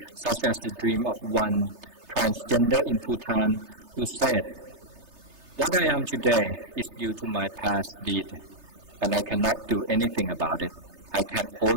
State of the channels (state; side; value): late; left; 3.3 ms